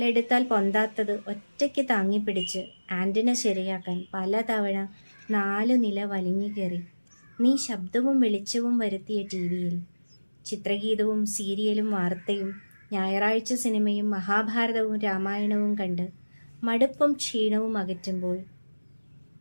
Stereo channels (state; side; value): inverted; both; correlation -1.00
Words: പൊന്താത്തത് ഒറ്റയ്ക്ക് താങ്ങിപ്പിടിച്ച് ആൻറ്റിന ശരിയാക്കാൻ പലതവണ 4 നില വലിഞ്ഞു കയറി നീ ശബ്ദവും വെളിച്ചവും വരുത്തിയ TV-യിൽ ചിത്രഗീതവും സീരിയലും വാർത്തയും ഞായറാഴ്ച സിനിമയും മഹാഭാരതവും രാമായണവും കണ്ട് മടുപ്പും ക്ഷീണവും അകറ്റുമ്പോൾ